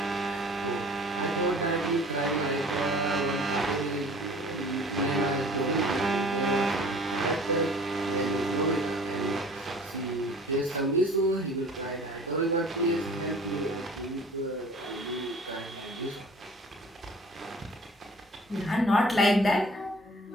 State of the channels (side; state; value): both; normal; correlation 0.47